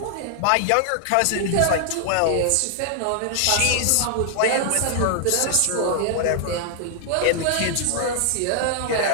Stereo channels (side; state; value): both; different; correlation 0.00